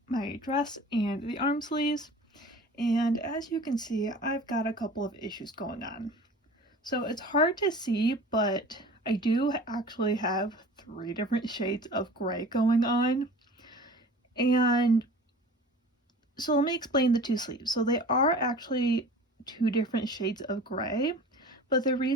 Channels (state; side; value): normal; both; correlation 0.41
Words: my dress and the arm sleeves, and as you can see, I've got a couple of issues going on. So it's hard to see, but I do actually have 3 different shades of gray going on. And so let me explain the 2 sleeves. So they are actually 2 different shades of gray, but the